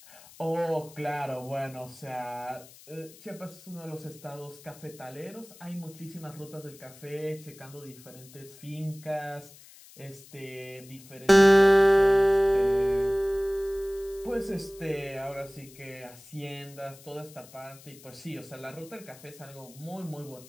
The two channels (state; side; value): noise; left; hiss, 21 dB below the sound